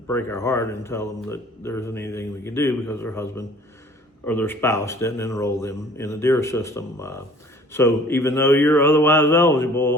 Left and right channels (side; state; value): both; normal; correlation 0.51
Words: our heart and tell them that there isn't anything we can do because their husband or their spouse didn't enroll them in the DEER system. So even though you're otherwise